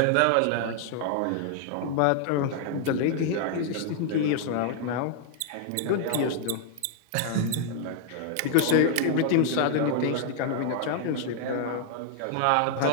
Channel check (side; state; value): both; different; correlation 0.00